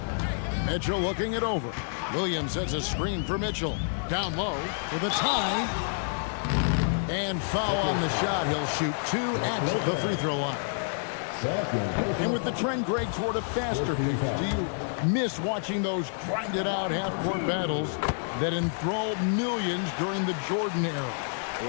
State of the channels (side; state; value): right; silent; digital silence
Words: Mitchell looking it over. Williams sets a screen for Mitchell. Down low for the tie. And foul on the shot. He'll shoot 2 at the free throw line. And with the trend, Greg, toward a faster pace, do you miss watching those grinded-out half-court battles that enthralled millions during the Jordan era?